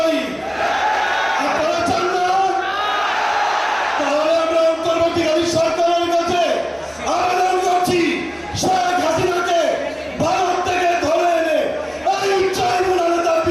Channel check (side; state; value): both; identical; correlation 1.00